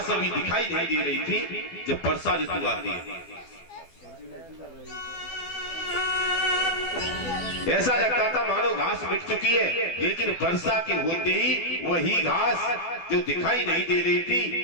अभी दिखाई नहीं दे रही थी, जब वर्षा ऋतु आती है ऐसा लगता था मानो घास मिट चुकी है, लेकिन वर्षा के होते ही वही घास जो दिखाई नहीं दे रही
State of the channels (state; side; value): late; right; 12 ms